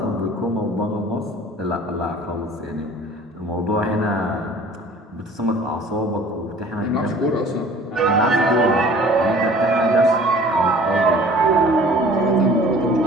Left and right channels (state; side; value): normal; both; correlation 0.48